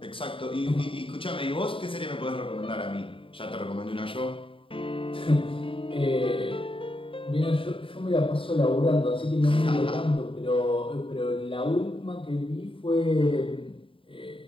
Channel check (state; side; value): late; right; 0.25 ms